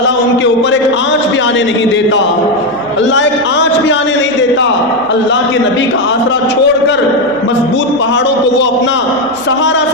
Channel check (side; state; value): right; noise; hum, 28 dB below the sound